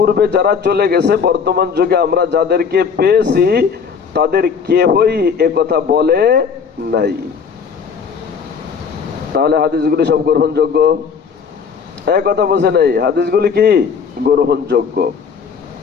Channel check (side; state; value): right; quieter; 6.2 dB